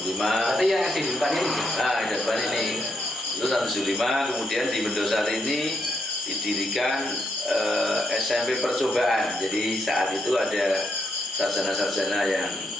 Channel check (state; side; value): normal; both; correlation 0.78